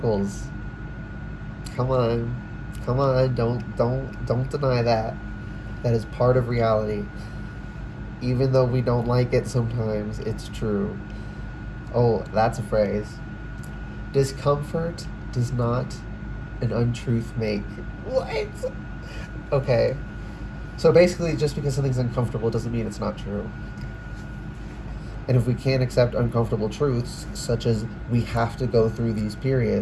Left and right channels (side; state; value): both; identical; correlation 1.00